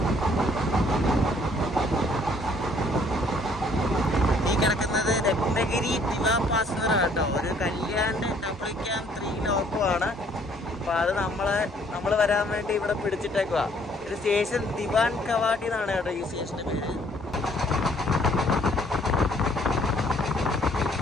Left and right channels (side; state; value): both; normal; correlation 0.62